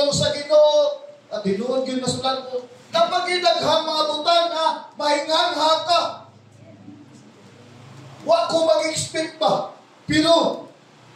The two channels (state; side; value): identical; both; correlation 1.00